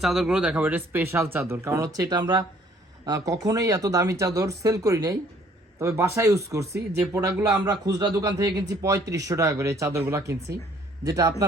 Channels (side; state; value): both; normal; correlation 0.60